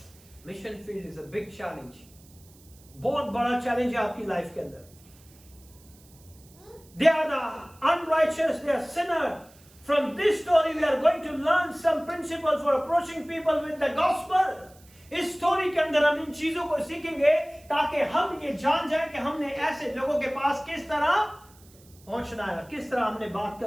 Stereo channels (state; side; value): noise; right; hiss, 26 dB below the sound